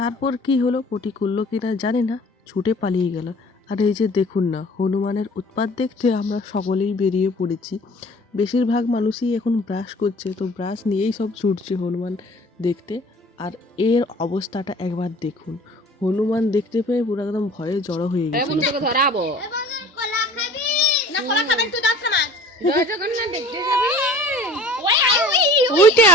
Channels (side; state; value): both; normal; correlation 0.47